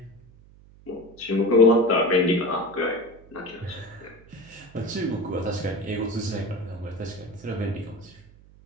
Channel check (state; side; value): noise; right; hum, 24 dB below the sound